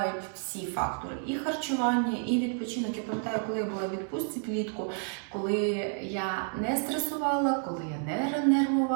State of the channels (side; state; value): left; silent; 58 dB below the other